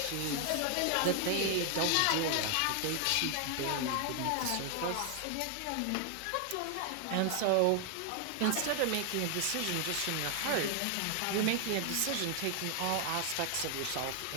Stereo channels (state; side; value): different; both; correlation 0.00